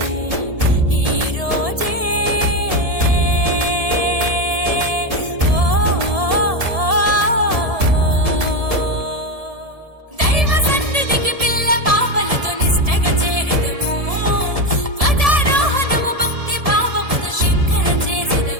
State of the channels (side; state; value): left; late; 1.7 ms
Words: ఈ రోజే దైవ సన్నిధికి పిల్ల పాపలతో నిష్టగా చేరెదము ధ్వజారోహణము భక్తి భావముతో శంకర